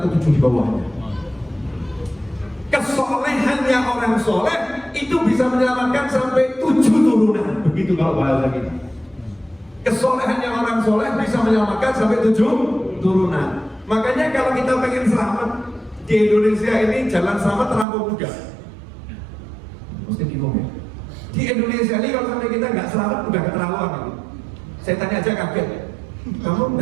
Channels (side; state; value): left; drops out; at 17.9 s